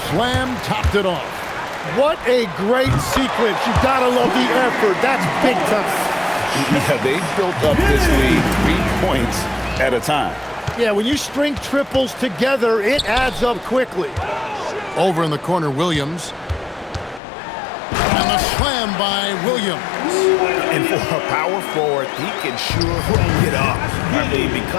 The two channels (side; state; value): right; drops out; at 17.2 s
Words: slam topped it off. What a great sequence. You gotta love the effort. That's big time. Yeah, they built up this lead 3 points at a time. Yeah, when you string triples together, it adds up quickly. Over in the corner, Williams. And the slam by Williams. And for a power forward, he can sure get up. I mean,